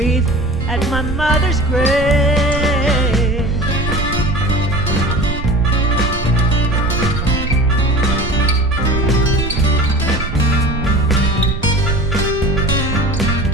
at my mother's grave.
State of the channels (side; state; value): right; noise; rumble, 6 dB below the sound